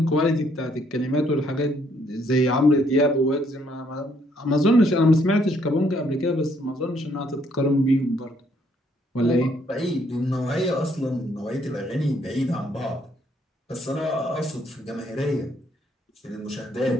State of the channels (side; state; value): both; normal; correlation 0.69